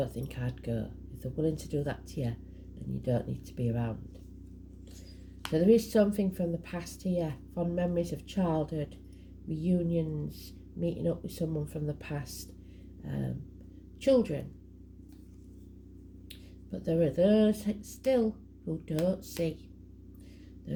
think I'd go. If they're willing to do that to you, then you don't need to be around. So there is something from the past here, fond memories of childhood, reunions, meeting up with someone from the past, children. But there are those still who don't see.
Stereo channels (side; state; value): both; identical; correlation 1.00